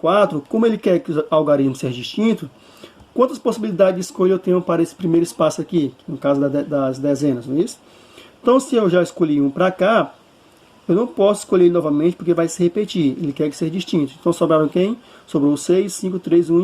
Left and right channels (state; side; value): identical; both; correlation 1.00